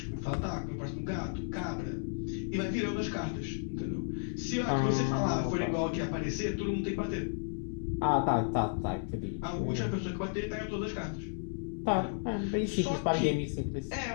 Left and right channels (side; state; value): right; silent; digital silence